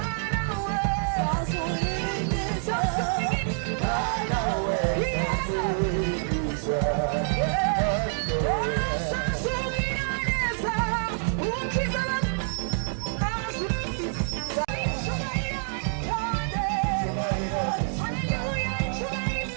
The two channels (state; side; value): silent; left; digital silence